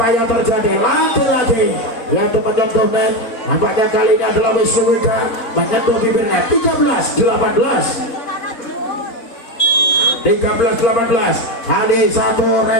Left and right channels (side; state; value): right; late; 4.4 ms